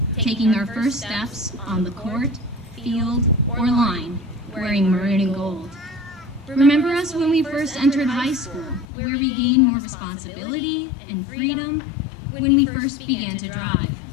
taking our first steps on the court, field, or line, wearing maroon and gold. Remember us when we first entered high school, where we gained more responsibility and freedom when we first began to drive.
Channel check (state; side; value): drops out; right; at 8.8 s